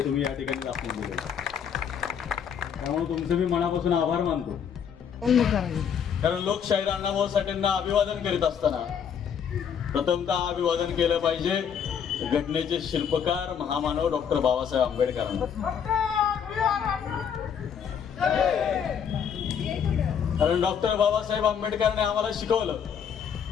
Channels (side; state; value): right; quieter; 7.7 dB